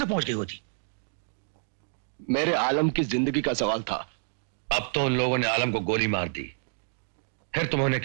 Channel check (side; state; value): left; silent; digital silence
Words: तक पहुंच गई होती। मेरे आलम की जिंदगी का सवाल था। अब तो उन लोगों ने आलम को गोली मार दी, फिर तुम उन्हें